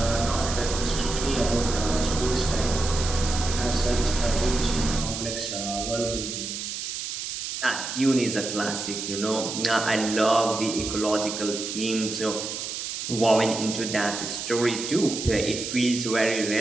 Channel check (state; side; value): noise; right; hiss, 5 dB below the sound